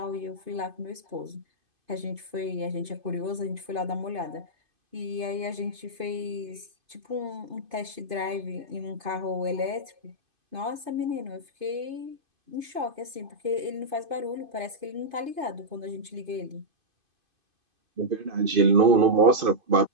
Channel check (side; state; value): left; late; 2.5 ms